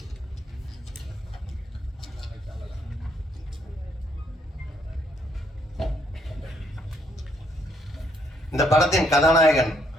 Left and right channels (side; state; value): both; normal; correlation 0.71